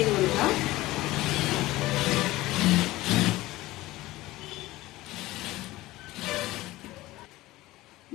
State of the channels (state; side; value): quieter; right; 18.0 dB